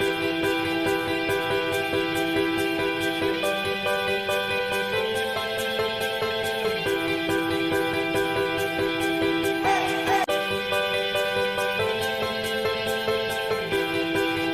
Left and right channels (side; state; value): both; identical; correlation 1.00